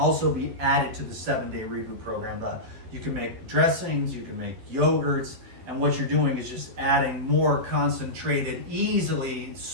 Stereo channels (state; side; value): late; left; 12 ms